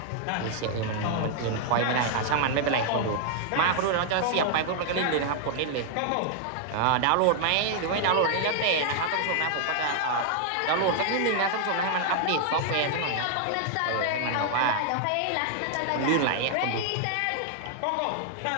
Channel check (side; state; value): both; different; correlation 0.00